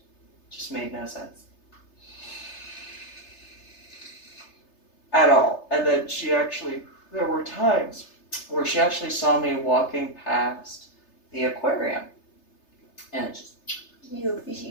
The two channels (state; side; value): late; right; 3.3 ms